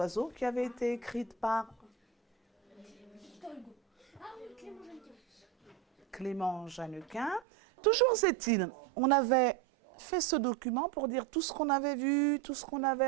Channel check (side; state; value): left; drops out; at 7.4 s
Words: qui avait été écrite par Clément Jeannequin. Toujours est-il, on avait fait ce document pour dire tout ce qu'on avait vu, tout ce qu'on